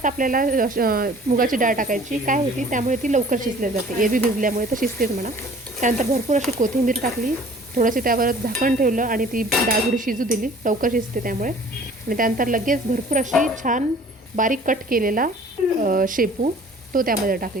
आपल्याला मुगाची डाळ टाकायची काय होती, त्यामुळे ती लवकर शिजली जाते, एरवी भिजल्यामुळे तर शिजतेच म्हणा। त्यानंतर भरपूर अशी कोथिंबीर टाकली, थोडंसं त्यावर झाकण ठेवलं आणि ती डाळ थोडी शिजू दिली, लवकर शिजते त्यामुळे। आणि त्यानंतर लगेच भरपूर अशी छान बारीक कट केलेला शेपू तो त्यामध्ये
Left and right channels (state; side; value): normal; both; correlation 0.50